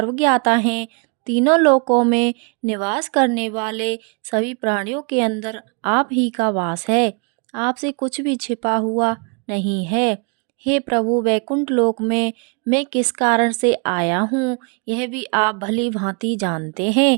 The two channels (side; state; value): left; quieter; 37.6 dB